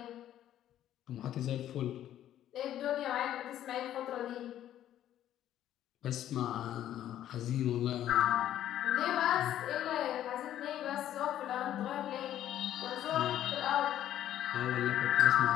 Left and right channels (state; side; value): quieter; right; 11.7 dB